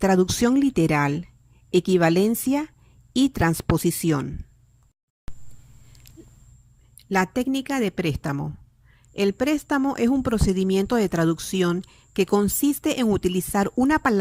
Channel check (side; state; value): both; identical; correlation 1.00